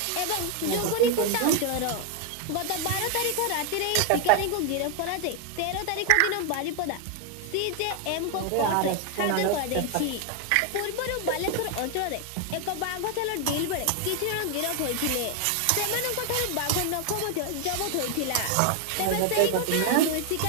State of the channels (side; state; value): both; different; correlation 0.01